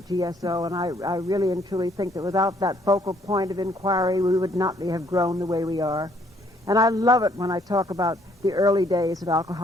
GSO, and I really and truly think that without that focal point of inquiry, we would not have grown the way we are. And I love it when I talk about the early days of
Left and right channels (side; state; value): both; normal; correlation 0.66